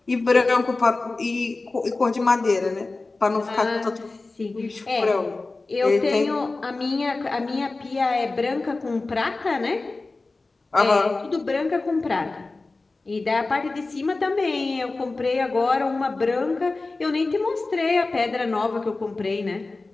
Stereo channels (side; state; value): right; quieter; 3.5 dB